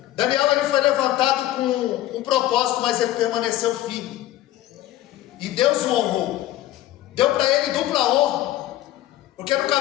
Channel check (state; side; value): quieter; right; 14.6 dB